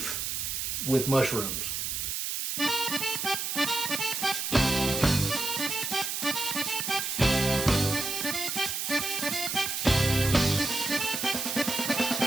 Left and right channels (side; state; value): right; noise; hiss, 2 dB below the sound